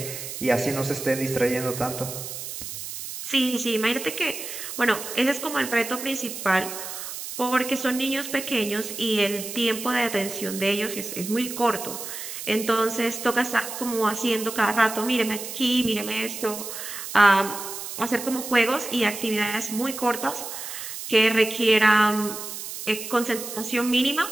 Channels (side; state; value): right; noise; hiss, 8 dB below the sound